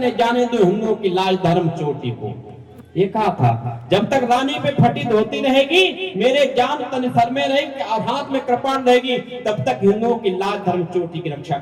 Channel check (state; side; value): identical; both; correlation 1.00